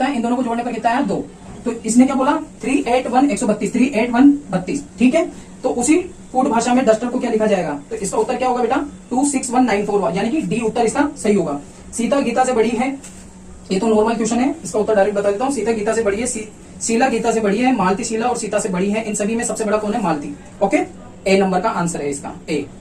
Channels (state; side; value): identical; both; correlation 1.00